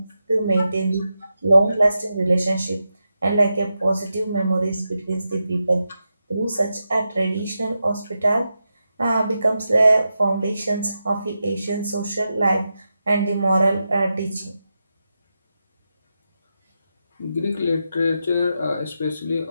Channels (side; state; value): both; inverted; correlation -0.88